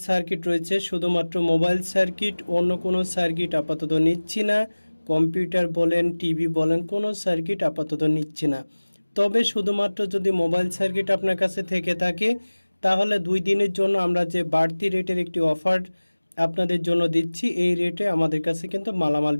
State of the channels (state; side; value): inverted; both; correlation -1.00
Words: সার্কিট রয়েছে। শুধুমাত্র মোবাইল সার্কিট, অন্য কোনো সার্কিট আপাতত নিচ্ছি না। কম্পিউটার বলেন, টিভি বলেন, কোনো সার্কিট আপাতত নিচ্ছি না। তবে শুধুমাত্র যদি মোবাইল সার্কিট আপনার কাছে থেকে থাকে তাহলে 2 দিনের জন্য আমরা যে বাড়তি রেটের একটি অফার আপনাদের জন্য দিচ্ছি, এই রেটে আমাদের কাছে কিন্তু মালামাল